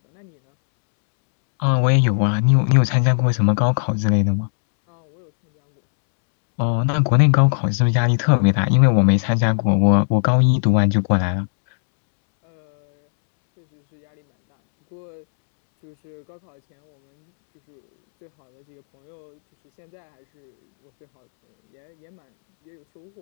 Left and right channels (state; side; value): silent; right; 67 dB below the other